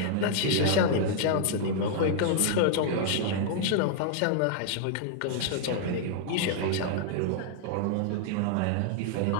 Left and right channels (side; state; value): both; different; correlation -0.01